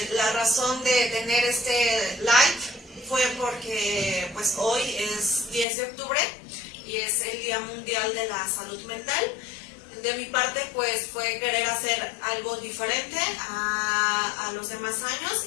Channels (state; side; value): drops out; right; at 5.7 s